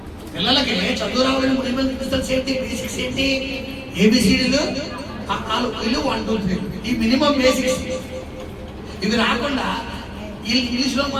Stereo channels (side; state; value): both; identical; correlation 1.00